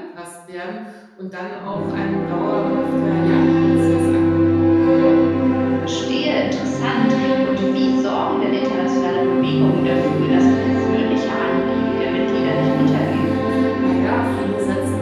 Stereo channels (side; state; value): both; identical; correlation 1.00